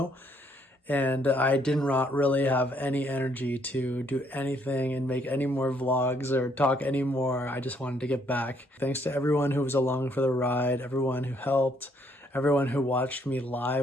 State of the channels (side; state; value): both; normal; correlation 0.69